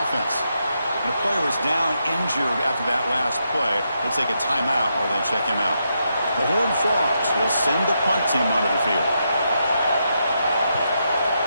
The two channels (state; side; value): inverted; both; correlation -0.82